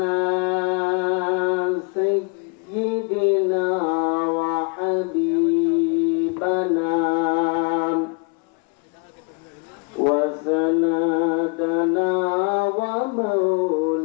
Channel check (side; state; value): right; quieter; 33.5 dB